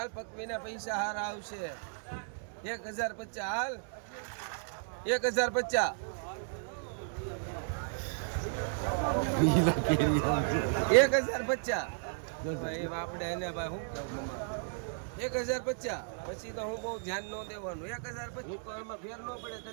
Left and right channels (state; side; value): silent; left; digital silence